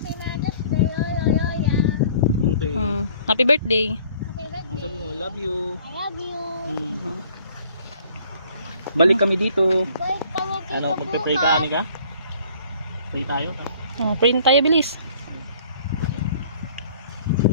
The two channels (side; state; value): both; inverted; correlation -0.55